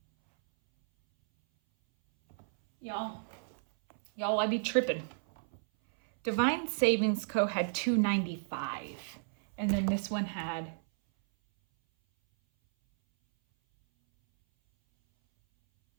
Y'all, I be tripping. Divine Savings Co. had $295, and then this one had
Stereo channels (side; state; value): left; silent; 56 dB below the other